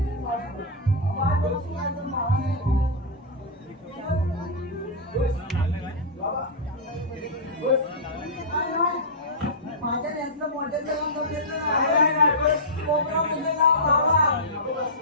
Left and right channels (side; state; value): both; normal; correlation -0.13